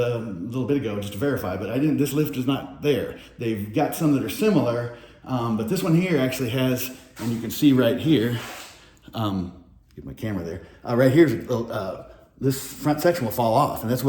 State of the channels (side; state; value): both; identical; correlation 1.00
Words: little bit ago just to verify, but this lift is not there. They've got some that are similar. But this one here actually has, and you can see right here, get my camera there, right here, this front section will fall off, and that's